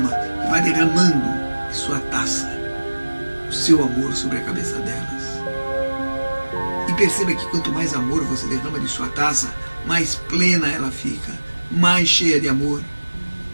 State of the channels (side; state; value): both; inverted; correlation -1.00